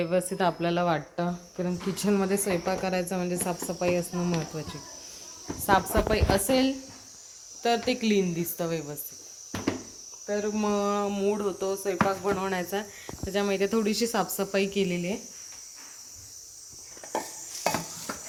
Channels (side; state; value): both; identical; correlation 1.00